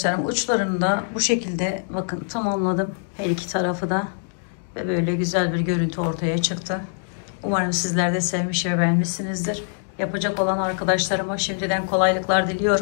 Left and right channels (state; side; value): silent; right; digital silence